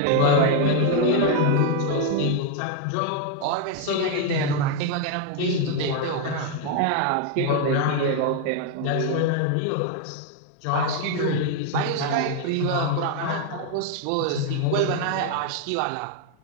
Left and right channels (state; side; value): different; both; correlation 0.01